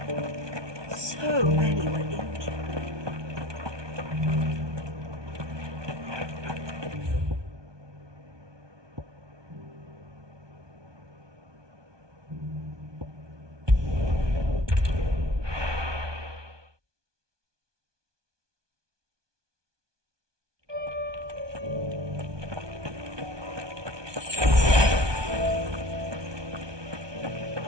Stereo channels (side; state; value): left; late; 1.2 ms